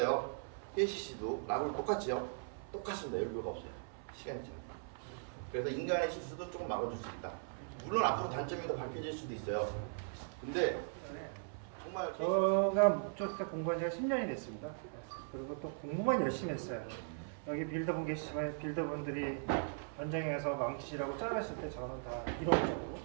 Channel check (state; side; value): silent; left; 52 dB below the other